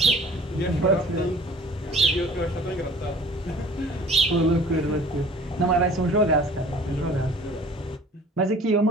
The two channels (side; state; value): both; normal; correlation 0.48